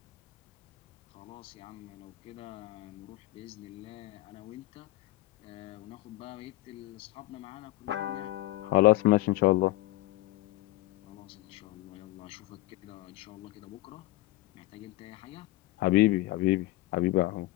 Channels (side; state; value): right; quieter; 18.0 dB